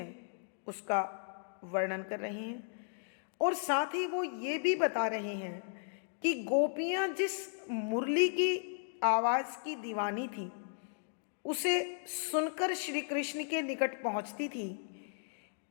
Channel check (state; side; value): silent; right; digital silence